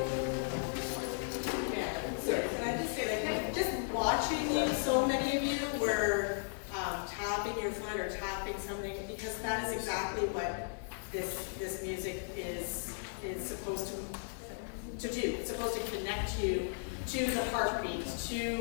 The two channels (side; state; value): right; silent; digital silence